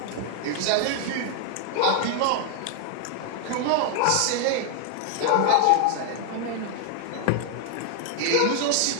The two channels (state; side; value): different; both; correlation 0.00